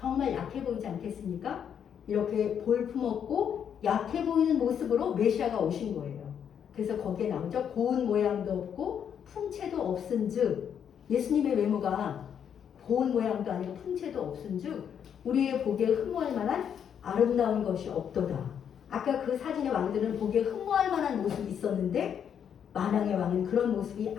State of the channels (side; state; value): right; quieter; 8.3 dB